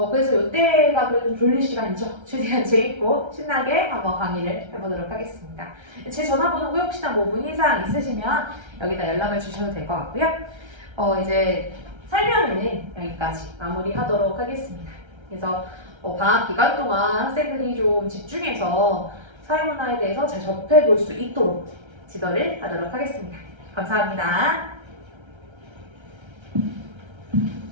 이때가 그래도 졸릴 시간이죠. 최대한 재밌고 신나게 한번 강의를 해보도록 하겠습니다. 제 전화번호고 혹시나 뭐 문의사항 있으시면 여기다 연락을 주셔도 될 것 같고요. 이제 설명은 여기까지 마무리하도록 하겠습니다. 그래서 방학 기간 동안 학생들이 좀 집중해서 사회문화에 대해서 잘 접해볼 수 있도록 지도를 하도록 하겠습니다. 감사합니다.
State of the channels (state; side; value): late; left; 1.3 ms